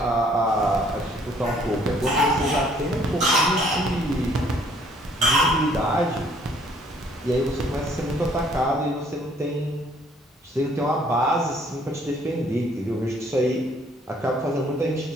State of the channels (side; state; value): both; normal; correlation 0.61